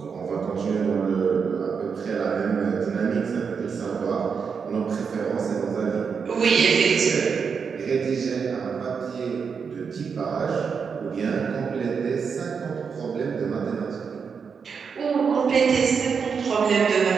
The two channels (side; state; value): left; quieter; 6.0 dB